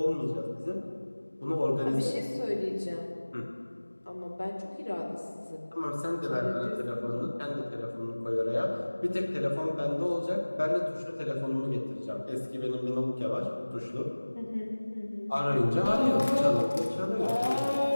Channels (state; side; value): inverted; both; correlation -1.00